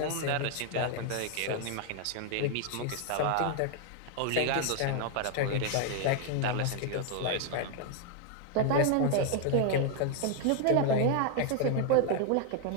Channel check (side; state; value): both; different; correlation 0.00